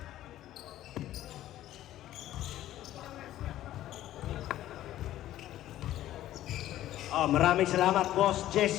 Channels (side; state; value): right; quieter; 13.6 dB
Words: Maraming salamat, Boss